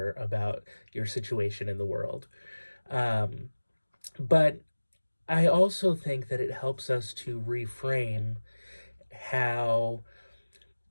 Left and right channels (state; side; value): inverted; both; correlation -1.00